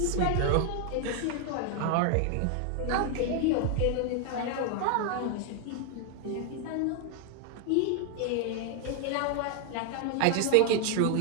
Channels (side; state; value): both; different; correlation 0.00